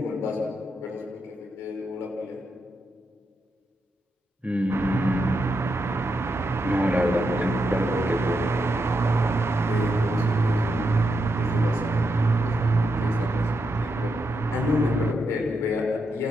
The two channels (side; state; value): both; normal; correlation 0.83